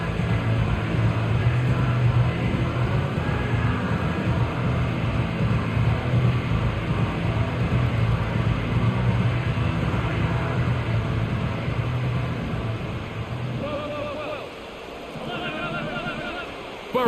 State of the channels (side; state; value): both; identical; correlation 1.00